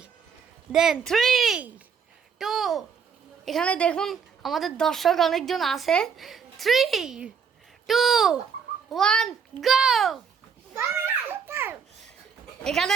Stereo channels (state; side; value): quieter; left; 6.6 dB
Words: দেন 3 2 এখানে দেখুন আমাদের দর্শক অনেকজন আছে। 3 2 1 গো। এখানে